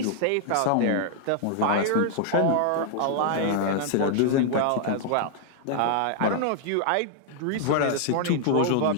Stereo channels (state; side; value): different; both; correlation -0.01